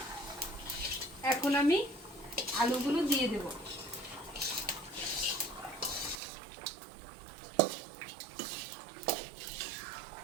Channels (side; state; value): left; drops out; at 6.2 s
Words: এখন আমি আলুগুলো দিয়ে দেব।